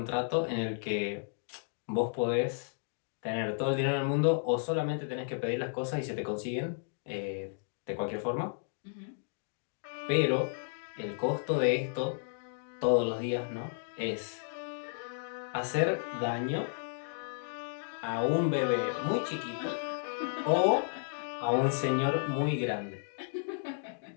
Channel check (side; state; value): right; silent; digital silence